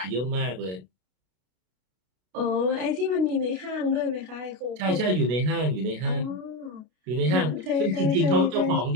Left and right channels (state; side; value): late; left; 32 ms